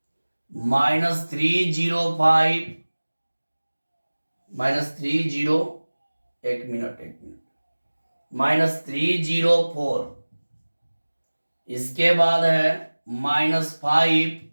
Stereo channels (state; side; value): inverted; both; correlation -1.00